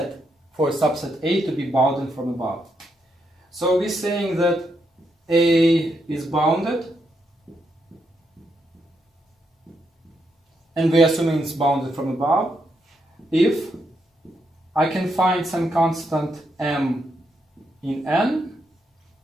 A to be bounded from above. So we're saying that A is bounded, and we're assuming it's bounded from above, if I can find some constant m in N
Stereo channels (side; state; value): both; normal; correlation 0.79